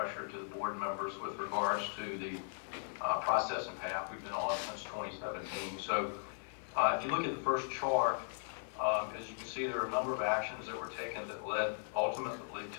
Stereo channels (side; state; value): right; silent; digital silence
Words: to the board members with regards to the process and path we've been on since 2017. So, if you look at the first chart, as you can see, there are a number of actions that were taken that led ultimately